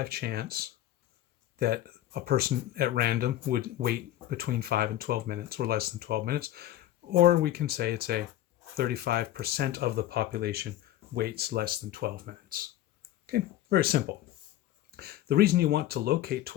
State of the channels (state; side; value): quieter; right; 13.6 dB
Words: chance that a person at random would wait between 5 and 12 minutes, or less than 12 minutes. Or we can say it's a 35% of the population waits less than 12 minutes. Okay, very simple. The reason you want to locate